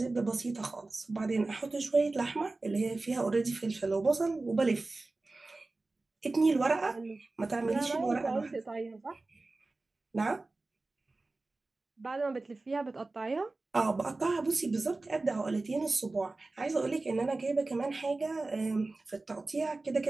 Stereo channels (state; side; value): quieter; left; 3.3 dB